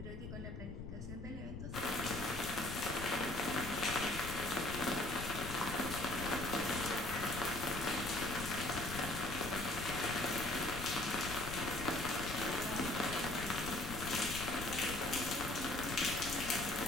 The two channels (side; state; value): left; noise; rumble, 7 dB below the sound